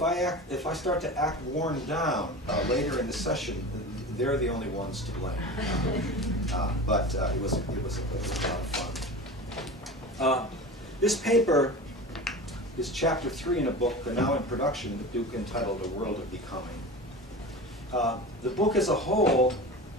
I start to act worn down later in the session, they're the only ones to blame. But it was a lot of fun. This paper is chapter 3 in a book now in production with Duke entitled A World of Becoming. The book as a whole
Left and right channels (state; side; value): normal; both; correlation 0.32